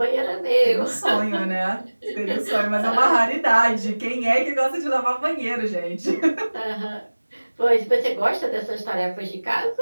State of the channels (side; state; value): both; inverted; correlation -1.00